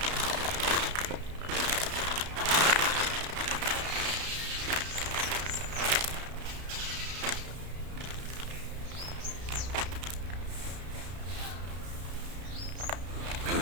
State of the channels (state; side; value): late; left; 33 ms